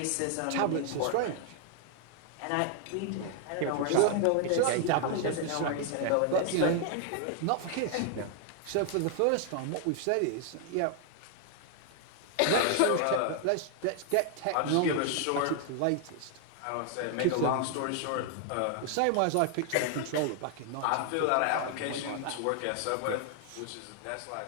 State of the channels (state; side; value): different; both; correlation 0.00